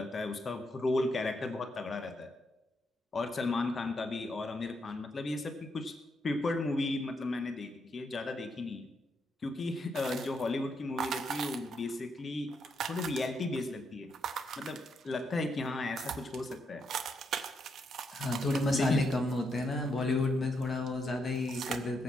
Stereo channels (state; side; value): normal; both; correlation 0.79